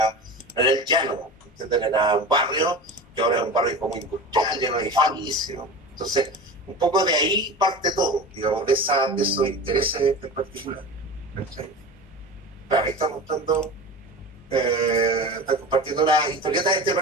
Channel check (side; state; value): both; normal; correlation 0.31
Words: el llano, ¿entienden? Era un barrio que ahora es un barrio como industrial, lleno de edificios. Entonces, un poco de ahí parte todo, digamos, de esos intereses en particular. ¿Cachai? Claro, ahí está mostrando, está compartiendo una historieta de este